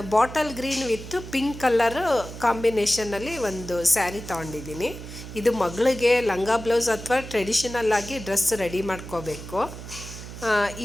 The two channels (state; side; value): noise; right; hum, 12 dB below the sound